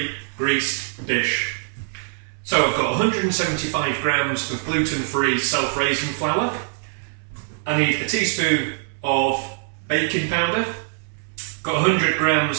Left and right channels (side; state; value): left; silent; 64 dB below the other